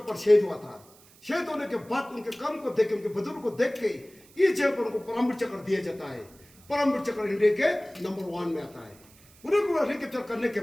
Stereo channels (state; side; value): noise; right; hiss, 26 dB below the sound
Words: पर शहीद हुआ था। शहीद होने के बाद उनके काम को देख के, उनके बुजुर्ग को देख के इस जगह पर उनको परमवीर चक्र दिया जाता है। परमवीर चक्र इंडिया के नंबर 1 में आता है। उनको रिकैप्चर करने के